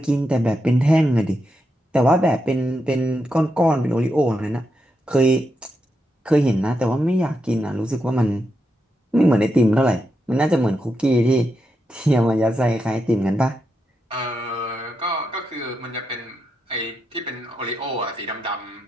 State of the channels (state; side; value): normal; both; correlation 0.85